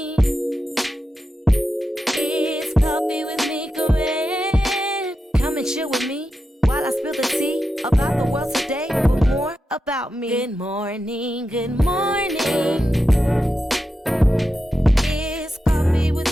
It's Coffee with Mika Wren. Come and chill with me while I spill the tea about the world today, but more about me. Good morning, good morning. It's Coffee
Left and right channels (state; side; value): normal; both; correlation 0.89